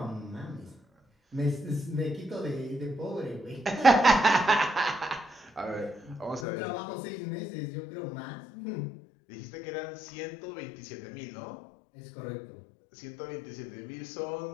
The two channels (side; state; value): right; drops out; at 6.5 s